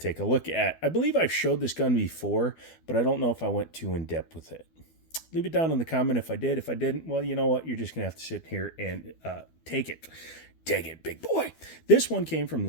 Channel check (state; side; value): late; right; 12 ms